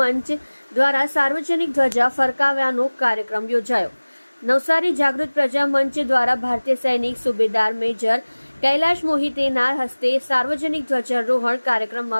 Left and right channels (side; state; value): both; inverted; correlation -1.00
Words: દ્વારા સાર્વજનિક ધ્વજા ફરકાવ્યાનો કાર્યક્રમ યોજાયો। નવસારી જાગૃત પ્રજા મંચ દ્વારા ભારતીય સૈનિક સુબેદાર મેજર કૈલાશ મોહિતેના હસ્તે સાર્વજનિક ધ્વજારોહણ